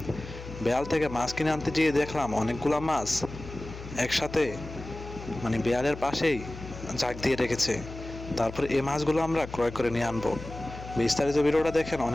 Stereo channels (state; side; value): noise; left; hum, 12 dB below the sound